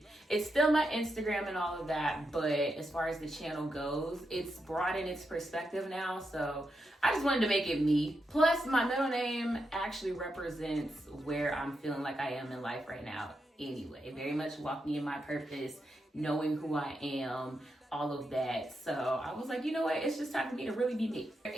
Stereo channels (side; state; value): both; normal; correlation 0.85